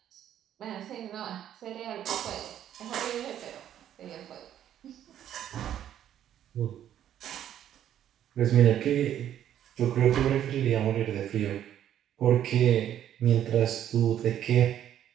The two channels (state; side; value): quieter; left; 10.8 dB